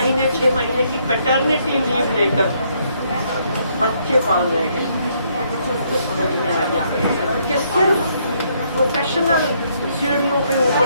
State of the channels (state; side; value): inverted; both; correlation -0.71